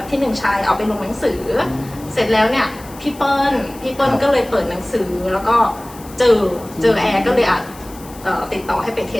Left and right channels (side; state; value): left; noise; hiss, 20 dB below the sound